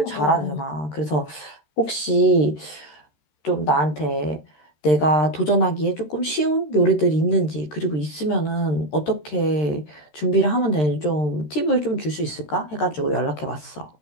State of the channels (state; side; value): late; right; 13 ms